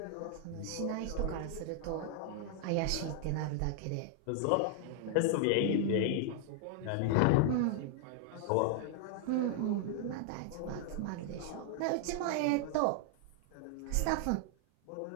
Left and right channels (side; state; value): both; different; correlation 0.00